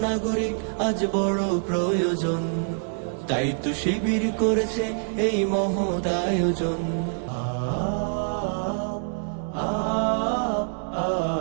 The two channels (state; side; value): silent; left; digital silence